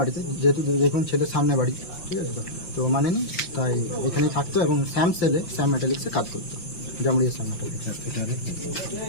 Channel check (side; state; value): right; late; 5.8 ms